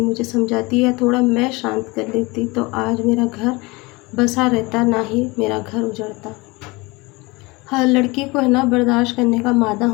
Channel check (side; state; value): right; quieter; 24.3 dB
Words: मुझे समझाती है, थोड़ा मैं शांत कर लेती तो आज मेरा घर बसा रहता, ना ही मेरा घर उजड़ता। हर लड़की को है ना बर्दाश्त करने का मादा